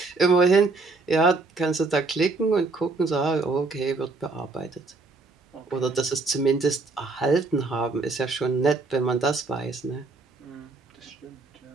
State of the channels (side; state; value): left; quieter; 3.6 dB